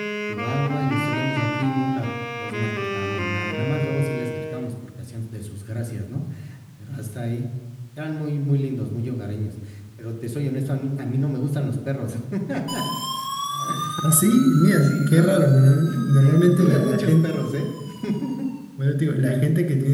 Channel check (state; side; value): identical; both; correlation 1.00